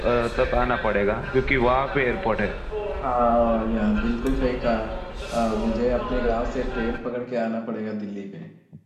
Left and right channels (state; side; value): identical; both; correlation 1.00